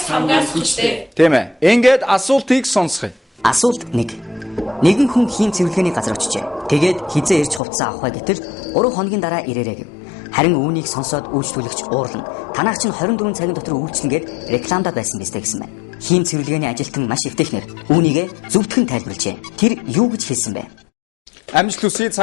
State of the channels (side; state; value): right; drops out; at 7.6 s